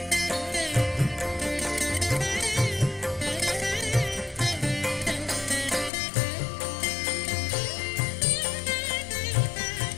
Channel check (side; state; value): right; drops out; at 5.9 s